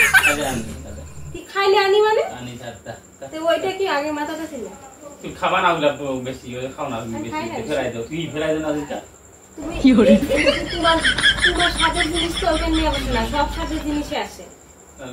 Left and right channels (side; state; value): both; identical; correlation 1.00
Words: কি খাইলে আনি মানে আনি দাদা তো ওইটা কি আগে মাথাটা ছিল তুই খাবা না ওগুলা বেশি খাও না বেশি ফেরাই দাও তুই ফেরাই দাও না দিটা তুমি কি করে তোমার সাদের জিনিস তো ওখানে নিয়ে বসে না সব সাদের জিনিসই আসে